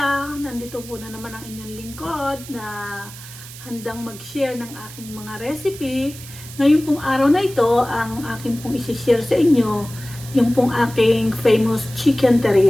Nandito po na naman ang inyong lingkod na handang mag-share ng aking mga recipe. Ngayon pong araw na ito, ang aking pong isi-share sa inyo, yung pong aking famous chicken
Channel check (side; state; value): right; noise; hiss, 16 dB below the sound